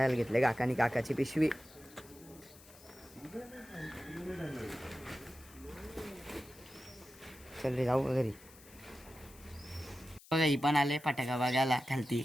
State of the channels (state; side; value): noise; left; hiss, 22 dB below the sound